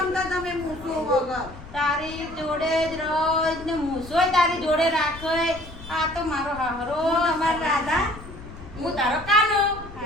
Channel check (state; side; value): noise; left; rumble, 16 dB below the sound